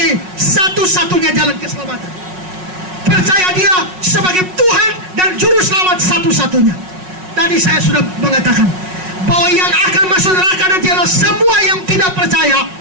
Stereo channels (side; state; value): left; late; 5.4 ms